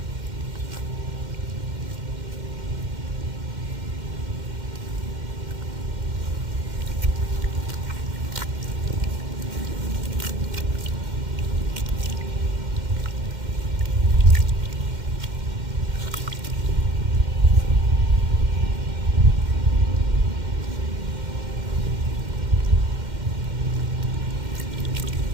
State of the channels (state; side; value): late; left; 2.1 ms